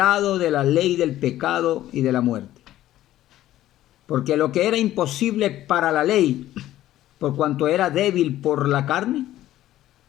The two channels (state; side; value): quieter; right; 13.9 dB